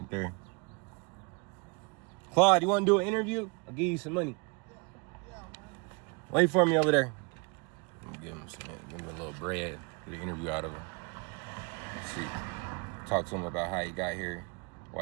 there. Claud, you want to do an interview? I'll give you some money. Wait for me over there. Give him a little bread, get an interview out of him. See, talk to him about how he got here,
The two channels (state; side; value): quieter; left; 31.6 dB